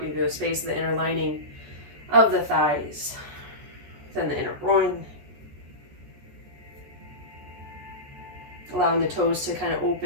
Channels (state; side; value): late; left; 14 ms